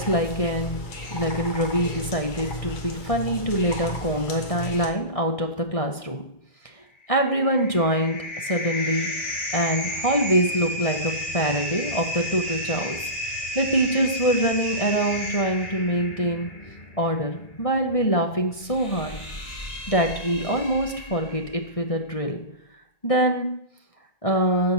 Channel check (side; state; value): right; late; 1.6 ms